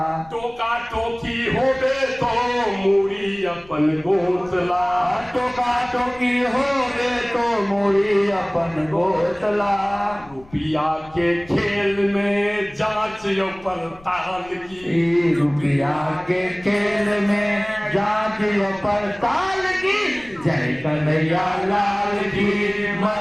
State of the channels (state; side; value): noise; left; rumble, 24 dB below the sound